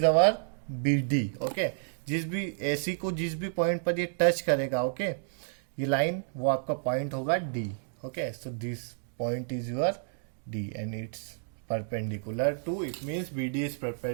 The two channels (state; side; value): silent; left; digital silence